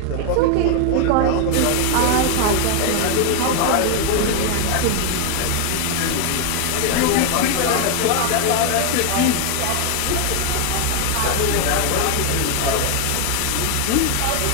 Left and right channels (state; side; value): different; both; correlation 0.01